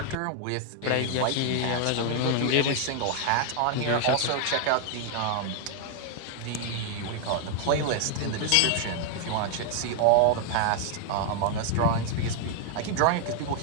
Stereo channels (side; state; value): both; different; correlation 0.00